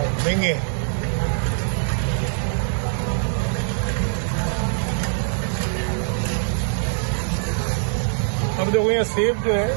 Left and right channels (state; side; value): silent; left; digital silence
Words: महंगे हैं। अब देखो यहाँ सेब जो है